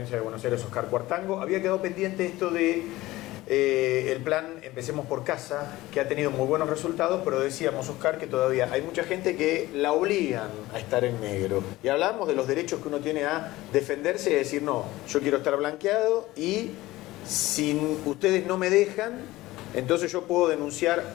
de Buenos Aires, Oscar Cuartango. Había quedado pendiente esto de el plan Empecemos por Casa, que ha tenido muy buenos resultados, pero decíamos, Oscar, que todavía hay mucha gente que la obligan a estar en negro. Y hablamos de los derechos que uno tiene a defenderse y decir, no, yo quiero estar blanqueado y si ustedes no me dejan, entonces yo puedo denunciar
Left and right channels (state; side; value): quieter; right; 18.0 dB